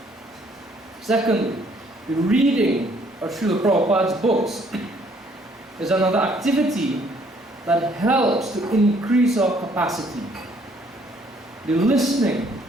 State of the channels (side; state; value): both; normal; correlation 0.64